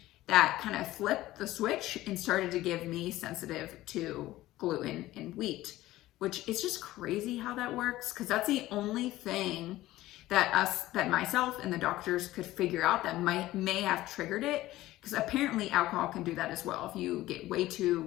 that kind of flipped the switch and started to give me sensitive to gluten and wheat, which is just crazy how that works, because that's the only thing that myself and the doctors could figure out that may have triggered it, because apparently alcohol can do that as well. If you get way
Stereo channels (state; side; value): quieter; right; 16.3 dB